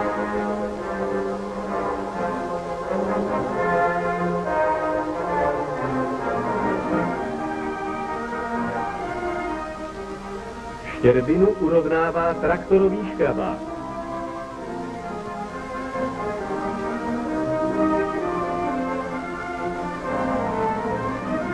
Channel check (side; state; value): both; identical; correlation 1.00